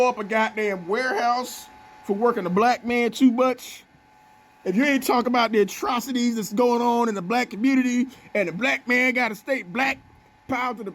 up a goddamn warehouse for working a black man too much, if you ain't talking about the atrocities that's going on in the black community and the black man got to stay black, power to the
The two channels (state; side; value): identical; both; correlation 1.00